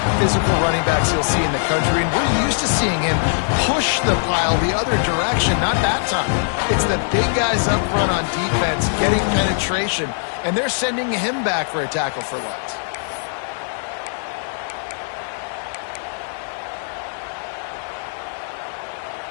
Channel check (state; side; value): silent; right; 57 dB below the other